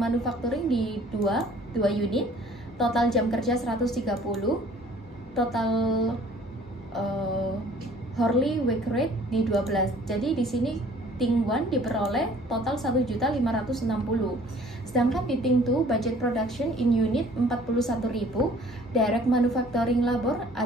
di 2 unit, total jam kerja 130, total hourly wage rate di 12. Jadi di sini Ting 1 diperoleh total 1.560. Sedangkan di Ting 2 budget production in unit 41.000, direct manufacturing labor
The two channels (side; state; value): both; normal; correlation 0.54